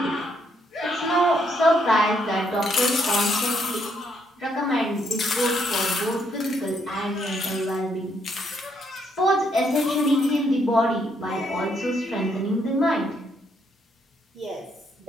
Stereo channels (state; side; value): normal; both; correlation 0.73